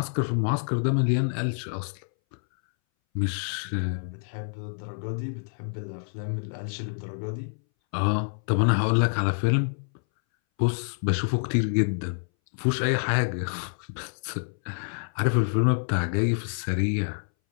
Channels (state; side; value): silent; right; 60 dB below the other